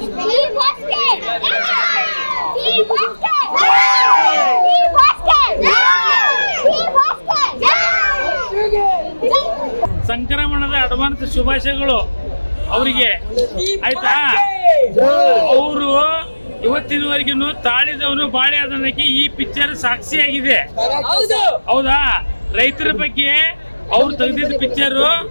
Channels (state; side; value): inverted; both; correlation -1.00